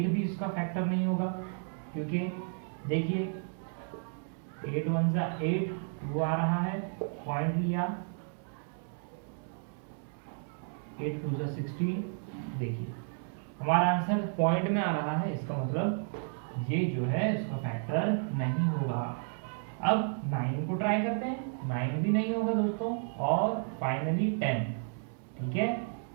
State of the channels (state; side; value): silent; left; 56 dB below the other